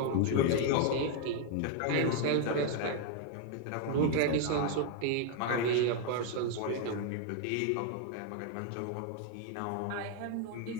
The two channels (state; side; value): different; both; correlation 0.01